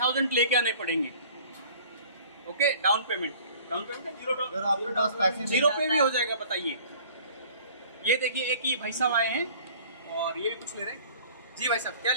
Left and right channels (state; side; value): inverted; both; correlation -0.50